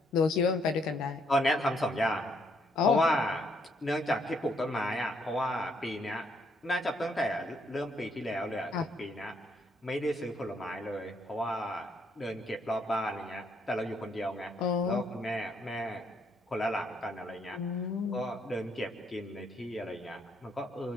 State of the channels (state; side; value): normal; both; correlation 0.71